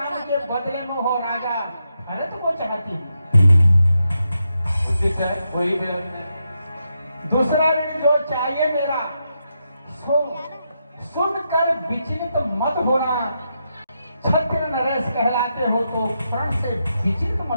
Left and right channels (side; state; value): both; inverted; correlation -0.84